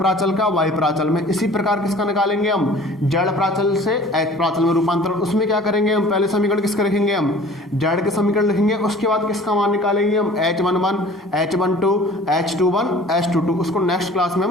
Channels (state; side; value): normal; both; correlation 0.47